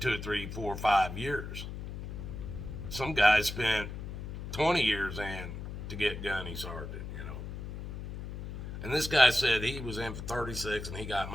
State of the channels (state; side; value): noise; left; hum, 7 dB below the sound